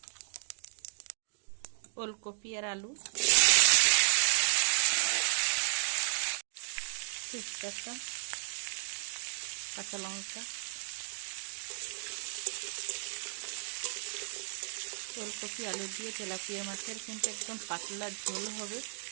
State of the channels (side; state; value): left; silent; digital silence